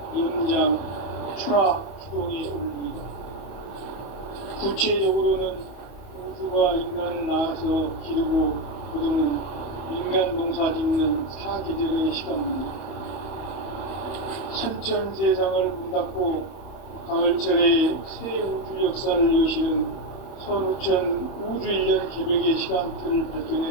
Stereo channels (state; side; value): late; right; 31 ms